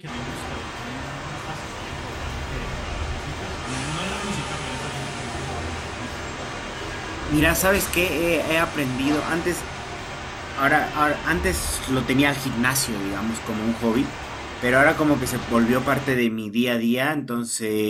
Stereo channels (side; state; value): both; identical; correlation 1.00